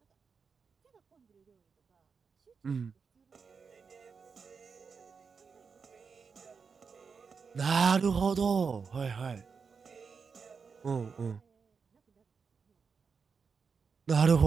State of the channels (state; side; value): quieter; left; 5.5 dB